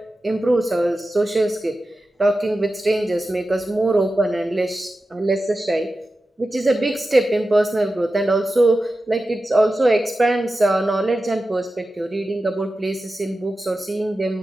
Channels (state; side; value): normal; both; correlation 0.93